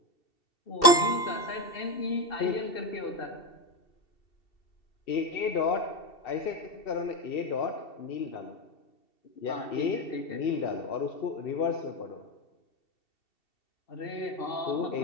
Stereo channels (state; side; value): late; right; 2.7 ms